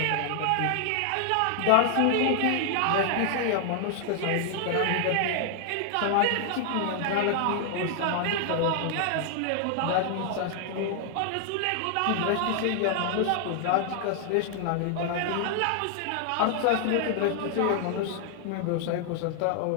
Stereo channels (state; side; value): different; both; correlation 0.00